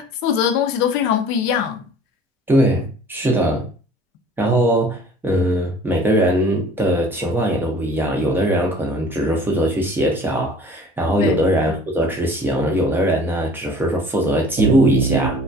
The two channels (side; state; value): both; normal; correlation 0.48